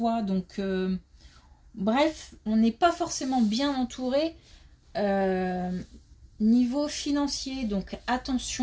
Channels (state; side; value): identical; both; correlation 1.00